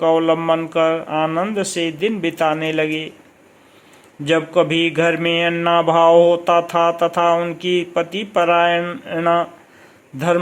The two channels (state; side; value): identical; both; correlation 1.00